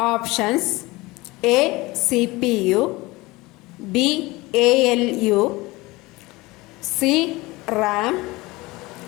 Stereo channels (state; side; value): quieter; right; 21.6 dB